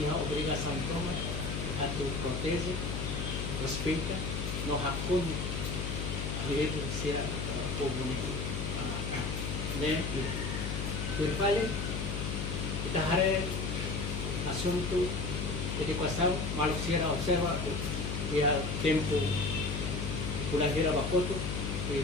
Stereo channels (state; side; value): noise; left; hum, 2 dB below the sound